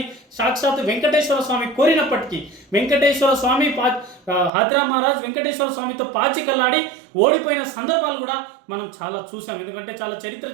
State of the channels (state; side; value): drops out; left; at 4.5 s